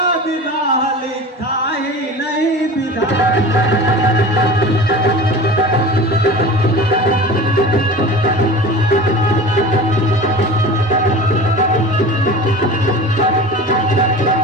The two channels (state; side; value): normal; both; correlation 0.35